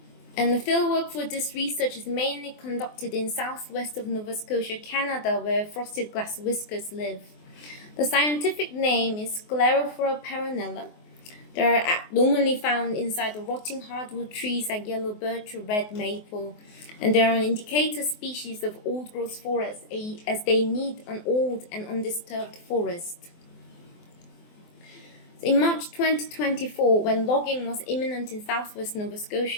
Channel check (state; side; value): late; right; 24 ms